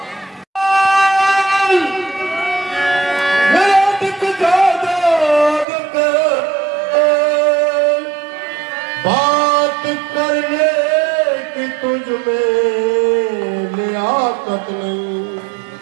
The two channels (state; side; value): drops out; left; at 5.7 s